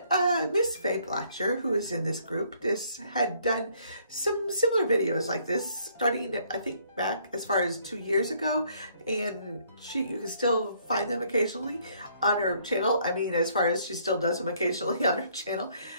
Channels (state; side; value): inverted; both; correlation -0.65